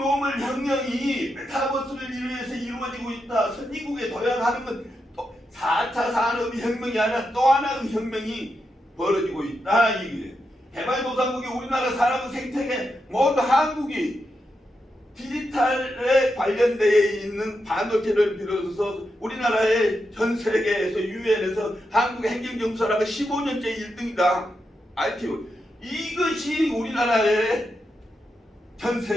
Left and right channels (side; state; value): both; normal; correlation 0.86